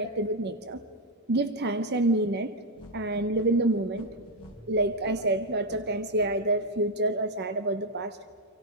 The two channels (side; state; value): both; normal; correlation 0.02